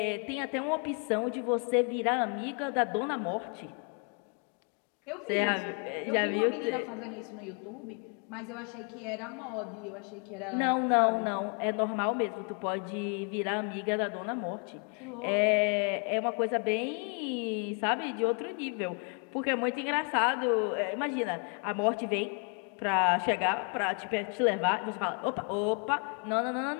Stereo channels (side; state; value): right; quieter; 38.5 dB